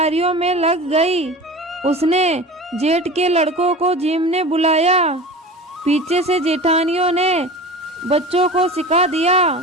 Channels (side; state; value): both; normal; correlation 0.34